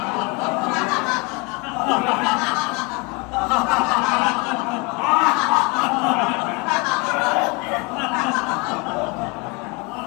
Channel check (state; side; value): quieter; right; 28.9 dB